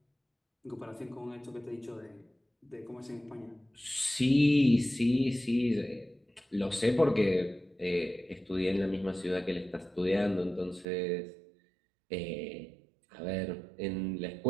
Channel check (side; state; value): left; drops out; at 10.9 s